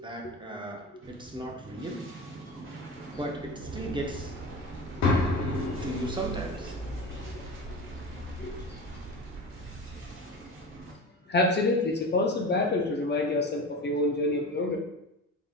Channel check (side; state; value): both; normal; correlation 0.28